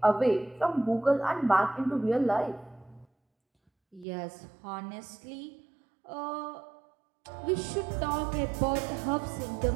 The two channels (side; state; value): left; drops out; at 4.0 s